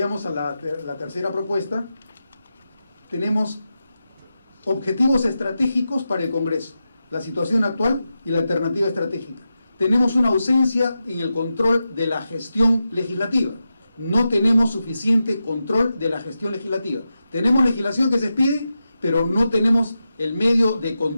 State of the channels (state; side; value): inverted; both; correlation -0.90